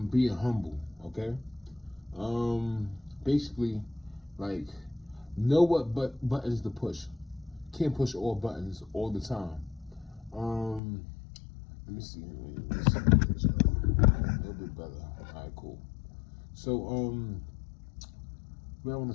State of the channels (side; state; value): right; drops out; at 10.8 s